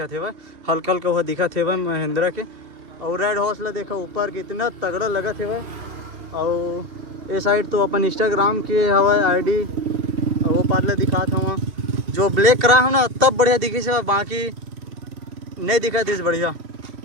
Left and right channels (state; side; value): late; left; 2.7 ms